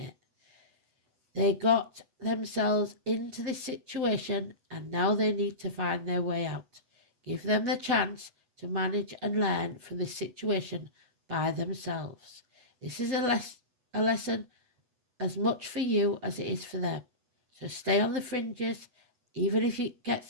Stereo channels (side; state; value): left; late; 8.1 ms